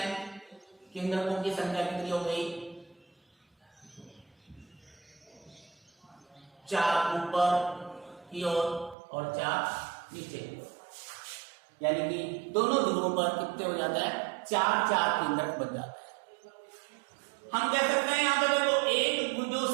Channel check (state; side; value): drops out; left; at 9.0 s